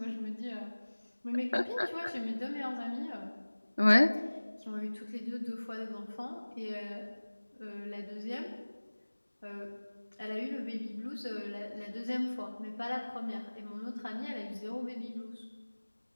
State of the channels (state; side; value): inverted; both; correlation -1.00